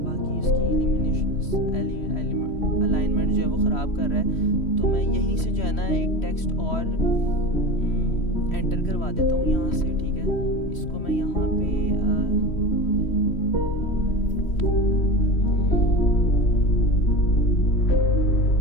बाकी इसकी अलाइनमेंट जो है वो ख़राब कर रहा है, तो मैं यहीं से जो है ना एक टेक्स्ट और एंटर करवा देता हूँ यहाँ से, ठीक है। इसको मैं यहाँ पे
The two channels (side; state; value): right; late; 3.1 ms